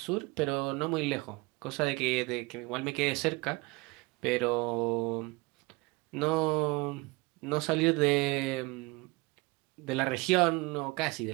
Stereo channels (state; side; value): quieter; left; 24.7 dB